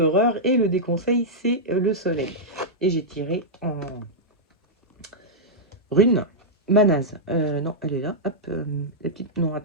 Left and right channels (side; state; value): both; normal; correlation -0.08